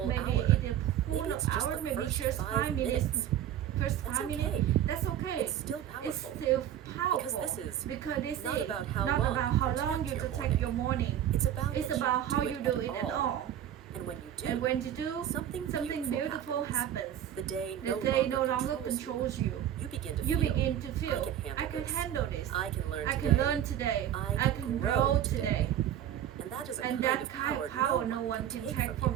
hour. Maybe it's just the first 5 minutes. That's okay. It's still powerful. Because this is not about how long you take your morning. It's about how you do it at all. And when you do, something beautiful happens. The day no longer controls you. You begin to feel, I can handle this. I can learn today. I can grow today. And that is a kind of power no one can take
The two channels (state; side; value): quieter; left; 10.7 dB